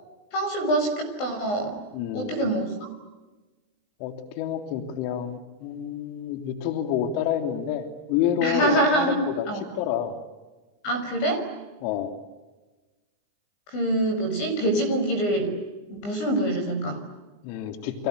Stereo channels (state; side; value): late; right; 20 ms